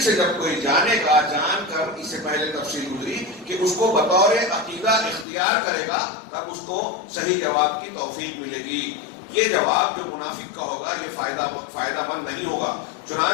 سے جب کوئی جانے گا، جان کر اس سے پہلے تفصیل گزری کہ اس کو بطور عقیدہ اختیار کرے گا، تب اس کو صحیح جواب کی توفیق ملے گی. یہ جواب جو منافق کا ہوگا یہ فائدہ مند نہیں ہوگا.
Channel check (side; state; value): right; drops out; at 5.2 s